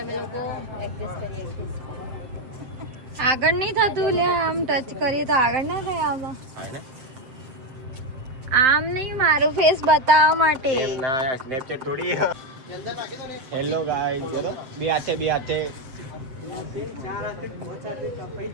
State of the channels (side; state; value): left; late; 7.7 ms